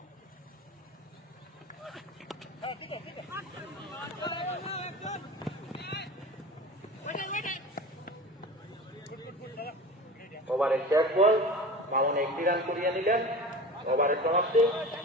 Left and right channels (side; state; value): both; normal; correlation 0.34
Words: ওভারের শেষ বল, মামুন 1টি রান করিয়ে নিলেন। ওভারের সমাপ্তি।